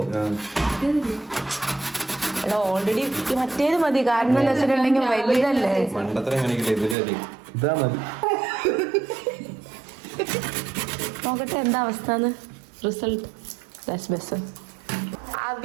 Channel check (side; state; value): left; drops out; at 7.0 s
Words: ഓൾറെഡി മറ്റേത് മതി. കാരണം എന്താ വെച്ചിട്ടുണ്ടെങ്കിൽ വലുതല്ലേ. പണ്ടത്ര എങ്ങനെയൊക്കെ ഇതാ മതി. നോക്കട്ടെ എന്താ അവസ്ഥ. Result best.